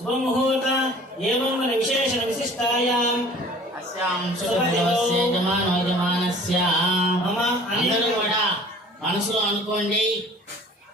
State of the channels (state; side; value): normal; both; correlation 0.48